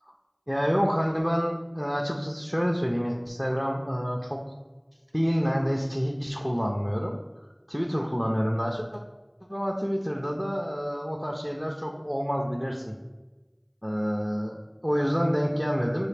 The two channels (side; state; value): both; identical; correlation 1.00